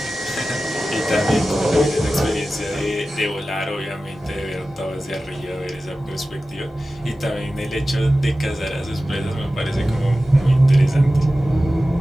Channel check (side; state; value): both; normal; correlation 0.95